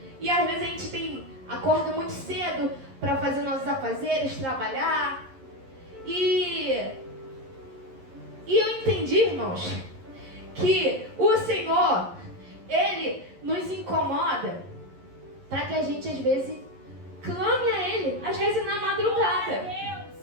E às vezes a gente acorda muito cedo para fazer nossos afazeres, trabalhar. E eu entendi, irmãos, que o Senhor, Ele nos incomoda para que a gente às vezes clame a Ele, às vezes na madrugada.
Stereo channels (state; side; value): late; left; 11 ms